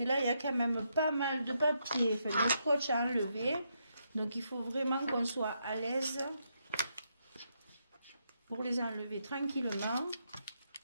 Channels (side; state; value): both; inverted; correlation -0.80